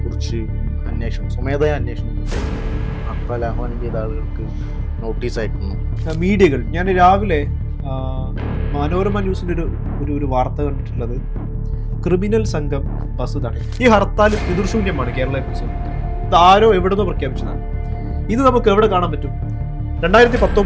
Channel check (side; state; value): both; identical; correlation 1.00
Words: കുറിച്ച് സ്വമേധയാ അന്വേഷണം ഹർത്താൽ ആഹ്വാനം ചെയ്ത ആളുകൾക്ക് നോട്ടീസ് അയക്കുന്നു. മീഡിയകൾ ഞാൻ രാവിലെ മനോരമ ന്യൂസിൻ്റെ ഒരു വാർത്ത കണ്ടിട്ടുള്ളത്, ക്രിമിനൽ സംഘം ബസ് തടയും. ഈ ഹർത്താൽ പിതൃശൂന്യമാണ് കേരളത്തെ കുറിച്ച്. ഇത് ആരോ എവിടുന്നോ പ്രഖ്യാപിച്ചതാണ്. ഇത് നമുക്ക് എവിടെ കാണാൻ പറ്റും?